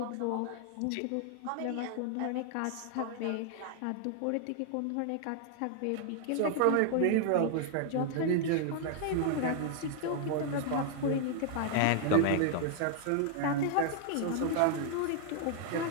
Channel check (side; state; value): both; different; correlation 0.00